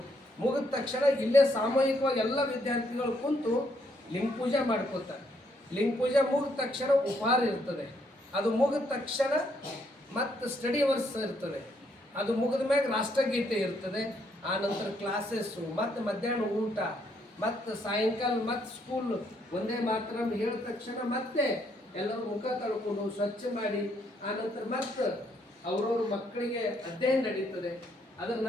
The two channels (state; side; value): normal; both; correlation 0.72